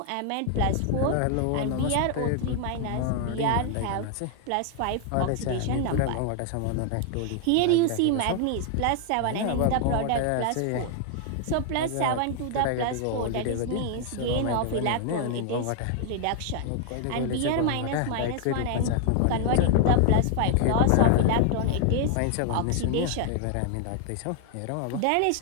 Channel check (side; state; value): both; different; correlation 0.00